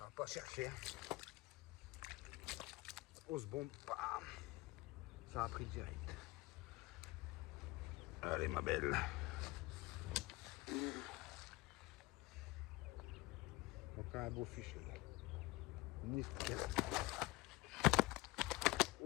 va pas chercher. On se bombe, bam. Ça a pris direct. Allez, ma belle. Donc, un beau fichier. Nickel.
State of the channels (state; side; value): quieter; right; 20.5 dB